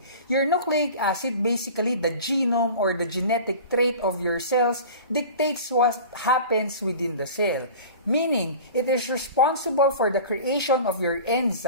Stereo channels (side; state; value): both; inverted; correlation -0.39